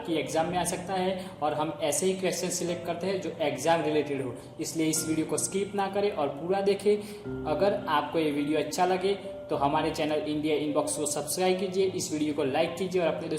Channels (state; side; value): identical; both; correlation 1.00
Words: एग्जाम में आ सकता है और हम ऐसे ही क्वेश्चन सिलेक्ट करते हैं जो एग्जाम रिलेटेड हो। इसलिए इस वीडियो को स्किप ना करें और पूरा देखें। अगर आपको ये वीडियो अच्छा लगे तो हमारे चैनल इंडिया इनबॉक्स को सब्सक्राइब कीजिए, इस वीडियो को लाइक कीजिए और अपने